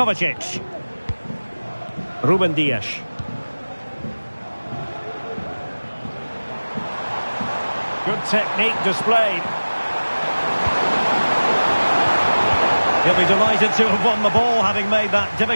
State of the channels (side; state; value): both; inverted; correlation -1.00